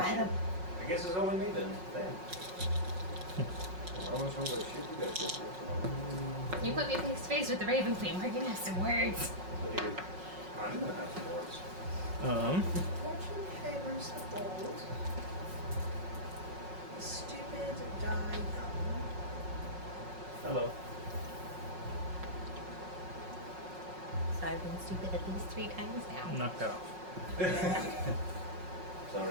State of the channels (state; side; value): late; left; 5.4 ms